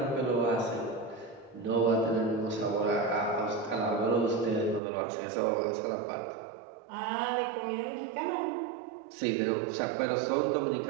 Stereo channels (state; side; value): drops out; left; at 4.8 s